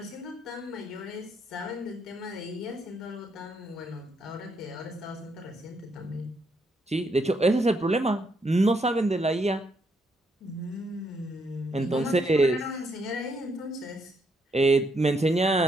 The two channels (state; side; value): normal; both; correlation 0.75